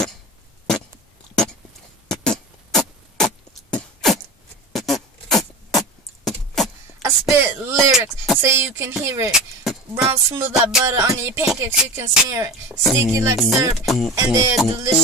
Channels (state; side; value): normal; both; correlation 0.31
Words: I spit lyrics so you can hear it. Brown smooth like butter on your pancakes, you can smear it. Sticky like syrup and they're